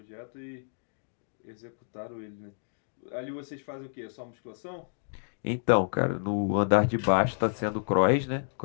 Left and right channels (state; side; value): silent; right; digital silence